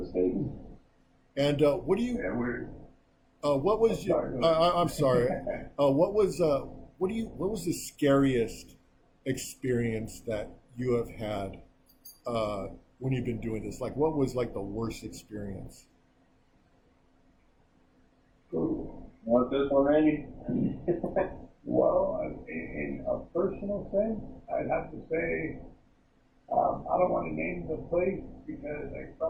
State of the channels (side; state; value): both; identical; correlation 1.00